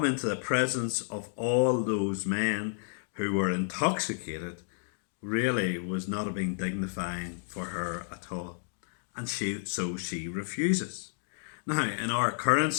into the presence of all those men who were intoxicated really was not being dignifying for her at all. And so she refuses. Now, in our current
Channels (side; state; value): right; silent; digital silence